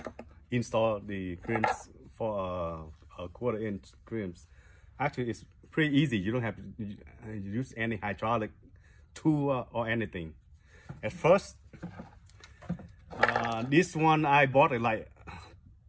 install the crimps for a 1/4 inch crimps. Actually, it's pretty easy. You don't have to use any hydraulic tool or anything. At first, this one I bought it like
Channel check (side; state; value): both; identical; correlation 1.00